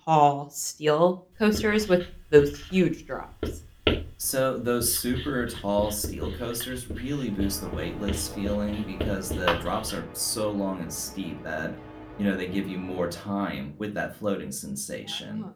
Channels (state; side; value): identical; both; correlation 1.00